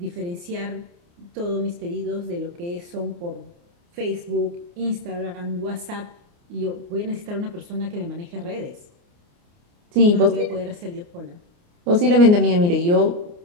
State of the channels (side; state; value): left; late; 29 ms